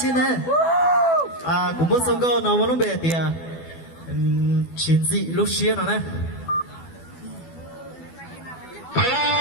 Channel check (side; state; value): right; late; 12 ms